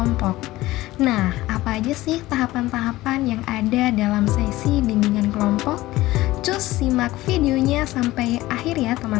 Nah, apa aja sih tahapan-tahapan yang ada dalam sesi bimbingan kelompok? Cus simak videonya sampai akhir ya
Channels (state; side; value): quieter; right; 17.5 dB